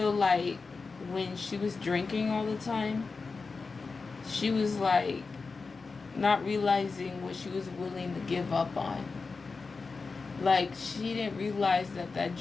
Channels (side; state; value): right; quieter; 4.4 dB